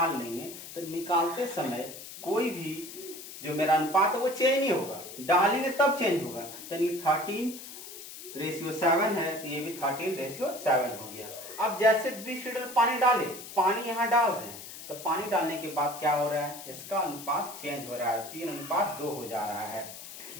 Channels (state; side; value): noise; left; hiss, 13 dB below the sound